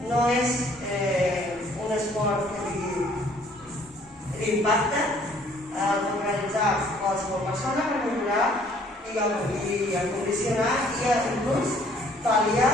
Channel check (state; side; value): normal; both; correlation 0.59